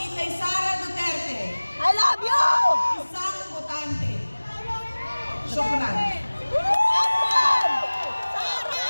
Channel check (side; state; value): both; inverted; correlation -1.00